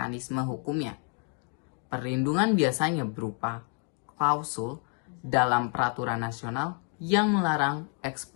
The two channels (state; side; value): quieter; right; 39.7 dB